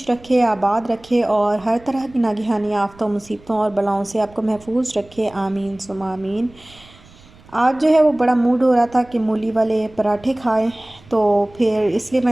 रखे, आबाद रखे और हर तरह की नागहानी आफ़तों, मुसीबतों और बलाओं से आपको महफूज रखे। आमीन सुम्मा आमीन। आज जो है वो बड़ा मूड हो रहा था कि मूली वाले पराठे खाएं, तो फिर इसलिए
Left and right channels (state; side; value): noise; right; rumble, 25 dB below the sound